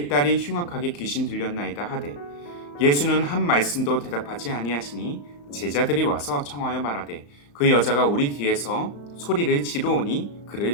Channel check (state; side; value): late; right; 35 ms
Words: 딸이 흉악하게 귀신 들렸나이다 하되 예수는 한 말씀도 대답하지 아니하시니 제자들이 와서 청하여 말하되 그 여자가 우리 뒤에서 소리를 지르오니